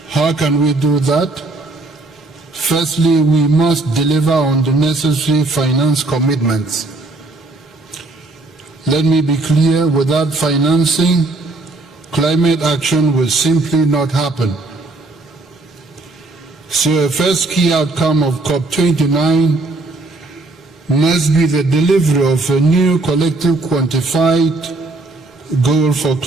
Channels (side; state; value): left; quieter; 3.1 dB